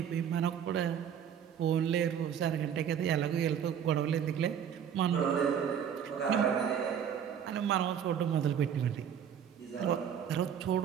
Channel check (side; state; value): left; quieter; 8.5 dB